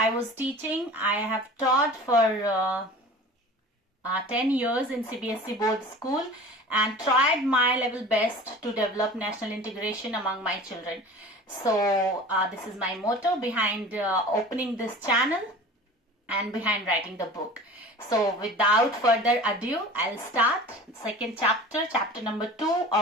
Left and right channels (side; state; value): both; normal; correlation 0.40